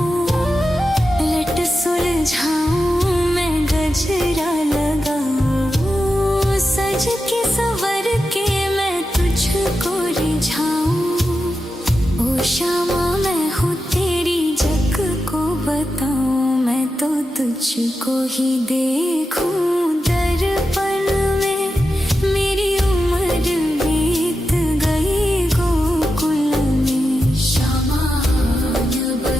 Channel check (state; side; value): normal; both; correlation 0.90